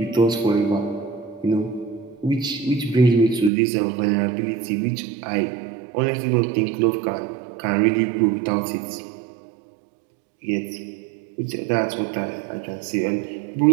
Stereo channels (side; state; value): left; drops out; at 3.5 s